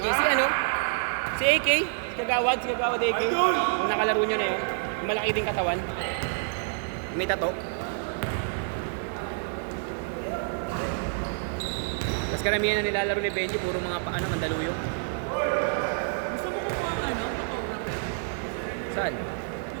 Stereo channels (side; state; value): left; silent; digital silence